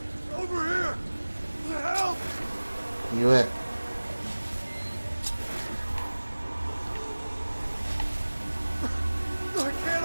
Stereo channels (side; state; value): both; inverted; correlation -1.00